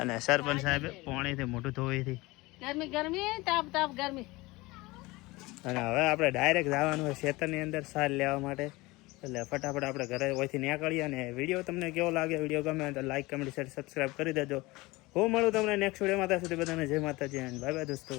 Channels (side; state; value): right; quieter; 21.9 dB